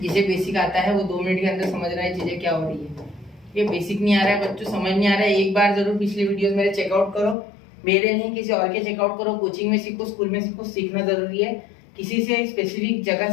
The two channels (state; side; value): drops out; right; at 7.4 s